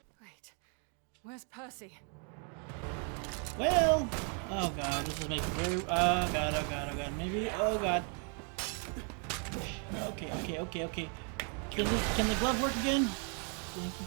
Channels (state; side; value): quieter; left; 40.0 dB